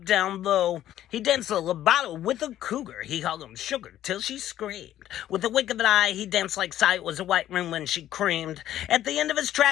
down low. He danced a legato with a cougar. He hugged him sugar till she screamed. With a wink of an eye, he danced like sight was a white room when she creamed. At the end of his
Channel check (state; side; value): quieter; right; 12.4 dB